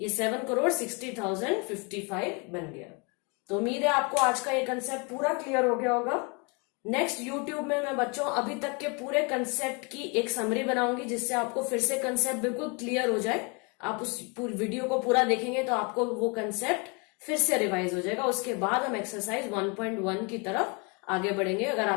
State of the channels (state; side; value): quieter; right; 32.1 dB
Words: ये 7 करोड़ 60,000 55 बन गया। तो उम्मीद है आपको आज का ये कंसेप्ट पूरा क्लियर हो गया होगा। नेक्स्ट यूट्यूब में मैं बच्चों अभी तक के पूरे कंसेप्ट की एक समरी बनाऊंगी, जिससे आपको फिर से कंसेप्ट बिल्कुल क्लियर हो जाए। आप उस पूरी वीडियो को पूरा देखेंगे तो आपको वो कंसेप्ट फिर से रिवाइज हो जाएगा। उसके बाद हम एक्सरसाइज 1.1 की तरफ आगे बढ़ेंगे। अगर